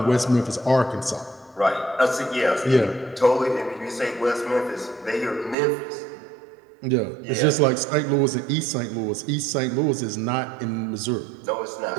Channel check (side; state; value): left; drops out; at 5.6 s